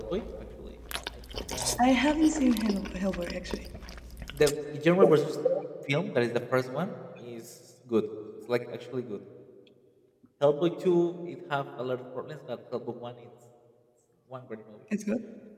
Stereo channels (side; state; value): both; identical; correlation 1.00